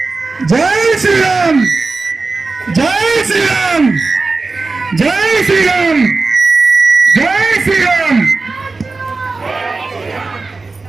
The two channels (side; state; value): left; quieter; 3.8 dB